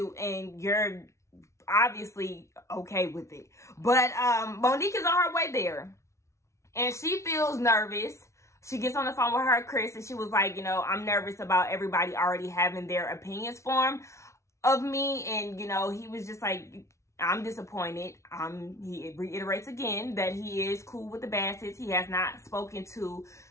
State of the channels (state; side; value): late; right; 0.14 ms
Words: And you're obviously okay with it. But Monique is on her way there. And she feels nervous. She gets on the phone with her, Chris, and she was like, you know, I'm nervous about everybody already having their opinions formed of me. And, you know, he was just like, I'm disappointed. He reiterates again that he is cool with the Bassett's. He has not spoken to